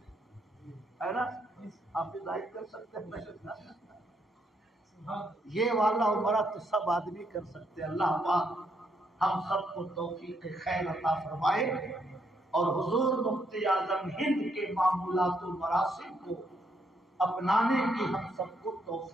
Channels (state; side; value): normal; both; correlation 0.75